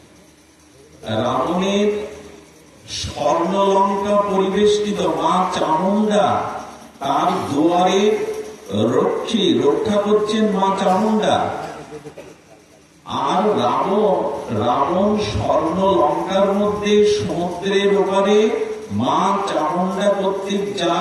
রাবণের স্বর্ণলঙ্কা পরিবেষ্টিত মা চামুন্ডা, তার দুয়ারে রক্ষা করছেন মা চামুন্ডা। আর রাবণ স্বর্ণ লঙ্কার মধ্যে সমুদ্রের ওপারে মা চামুন্ডা কর্তৃক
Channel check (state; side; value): identical; both; correlation 1.00